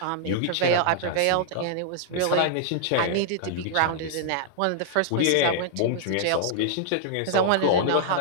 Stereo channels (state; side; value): different; both; correlation -0.01